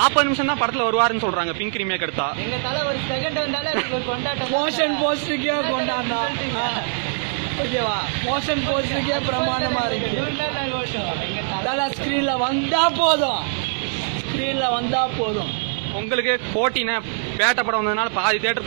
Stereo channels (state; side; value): silent; left; digital silence